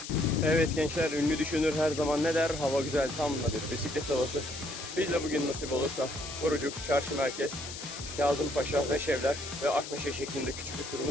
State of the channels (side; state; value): left; noise; hiss, 10 dB below the sound